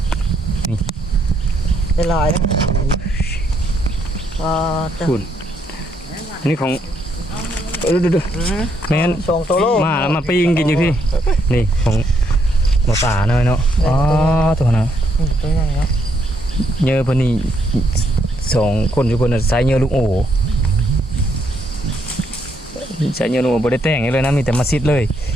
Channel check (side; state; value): both; normal; correlation 0.74